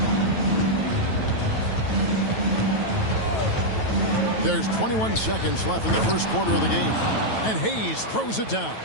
There's 21 seconds left in the first quarter of the game. And Hayes throws it down.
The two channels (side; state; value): right; late; 9.2 ms